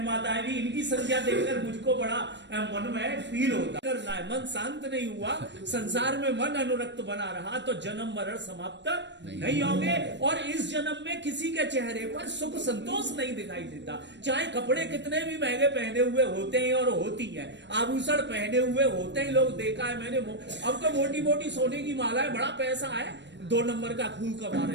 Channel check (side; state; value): left; late; 0.52 ms